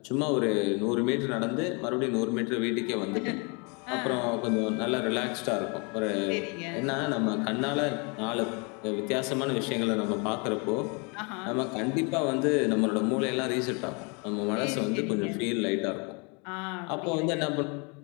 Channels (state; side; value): quieter; right; 32.8 dB